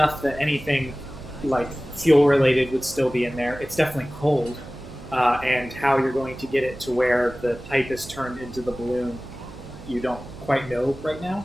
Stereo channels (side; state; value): right; noise; hum, 16 dB below the sound